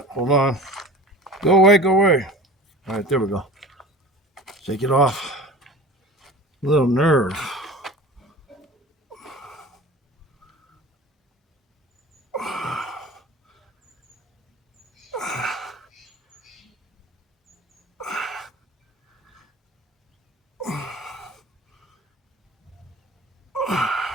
Hold on. Go away, go away. All right, there we go. Take it off. A little nerve.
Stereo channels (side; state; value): both; normal; correlation 0.39